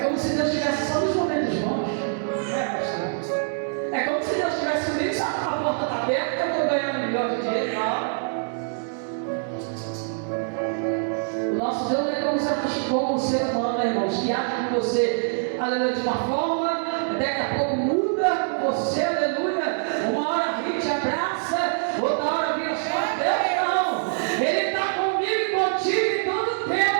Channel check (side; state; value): left; silent; digital silence